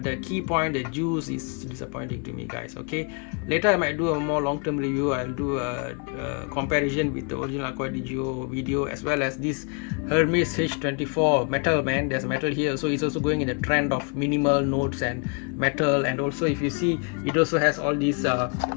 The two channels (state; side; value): quieter; right; 37.1 dB